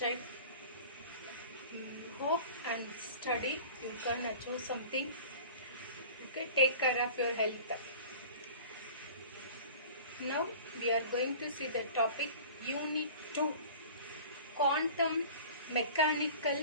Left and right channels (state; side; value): inverted; both; correlation -0.41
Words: Hope and study. You can achieve something. Okay, take care of your health. Now we are going to see the topic Unit-2, Quantum